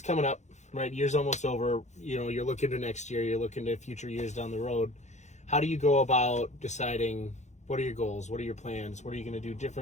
coming up, right? Years almost over, you're looking to next year, you're looking to future years down the road. How do you go about deciding what are your goals? What are your plans? What are you going to do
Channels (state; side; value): late; right; 0.34 ms